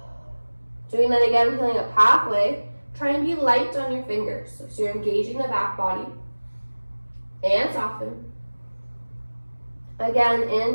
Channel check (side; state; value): both; inverted; correlation -1.00